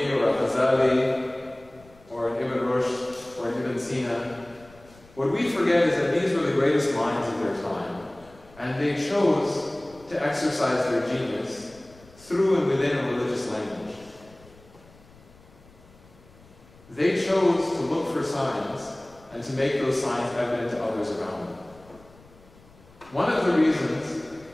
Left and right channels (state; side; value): noise; left; rumble, 25 dB below the sound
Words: or a Ghazali or an Ibn Rushd or an Ibn Sina. What we forget is that these were the greatest minds of their time, and they chose to exercise their genius through and within a religious language. They chose to look for signs and to make those signs evident to others around them. One of the reasons